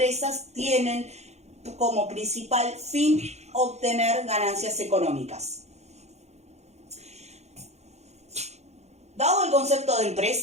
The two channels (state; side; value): late; left; 0.32 ms